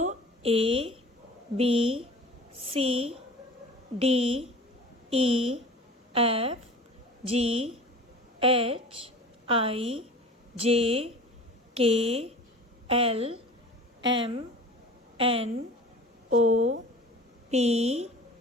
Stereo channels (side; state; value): both; normal; correlation 0.40